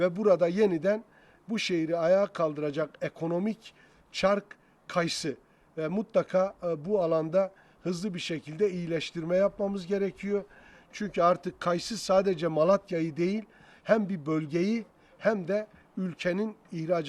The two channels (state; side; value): identical; both; correlation 1.00